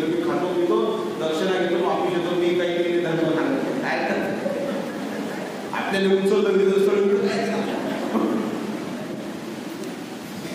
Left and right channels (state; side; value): identical; both; correlation 1.00